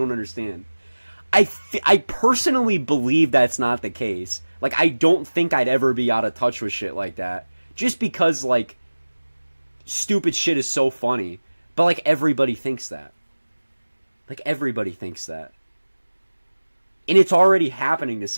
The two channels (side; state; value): both; inverted; correlation -1.00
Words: understand. I personally believe that's not the case. Like, I don't think I'd ever be out of touch with shit like that, just because, like, stupid shit is so funny. But, like, everybody thinks that. Like, everybody thinks that. And it's already happening to